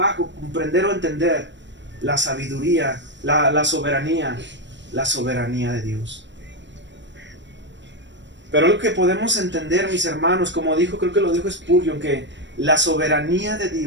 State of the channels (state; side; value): late; left; 0.53 ms